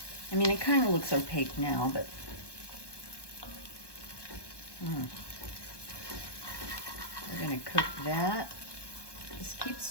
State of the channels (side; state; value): right; late; 1.2 ms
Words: I mean, it kind of looks opaque now, but we're gonna cook that. Just keep